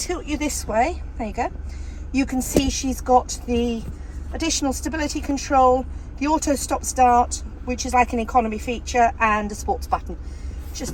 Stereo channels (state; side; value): identical; both; correlation 1.00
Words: you this way, there you go, you can see she's got the additional stability control, the auto stop start, which is like an economy feature, and a sports button,